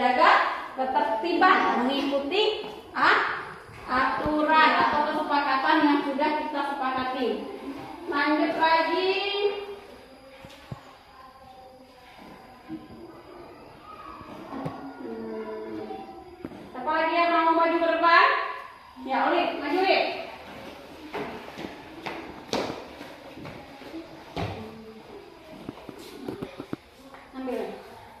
ketertiban, mengikuti aturan atau kesepakatan yang sudah kita sepakati. Lanjut lagi. Siapa lagi yang mau maju ke depan? Ya, Olip, maju Olip. Ambil.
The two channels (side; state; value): both; identical; correlation 1.00